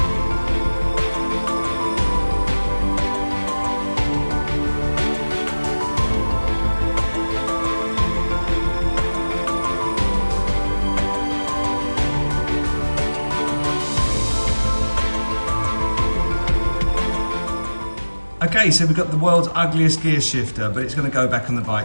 Okay, so we've got the world's ugliest gear shifter, but it's going to go back on the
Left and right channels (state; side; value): inverted; both; correlation -1.00